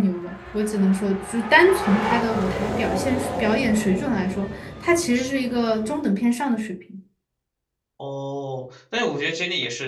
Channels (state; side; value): identical; both; correlation 1.00